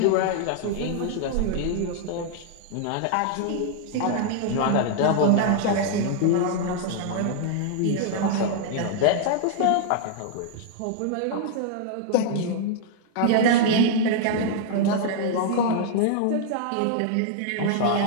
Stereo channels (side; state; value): both; different; correlation -0.01